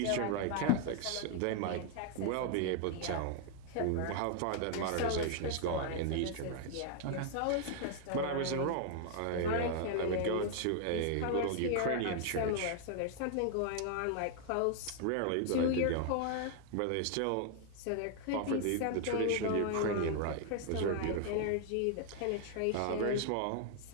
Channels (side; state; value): both; different; correlation 0.00